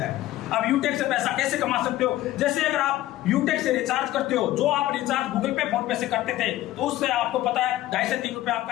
है। अब यूटेक से पैसा कैसे कमा सकते हो, जैसे अगर आप यूटेक से रिचार्ज करते हो, जो आप रिचार्ज गूगल पे फोन पे से करते थे तो उससे आपको पता है 2.5 से 3 रुपए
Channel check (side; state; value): right; quieter; 15.2 dB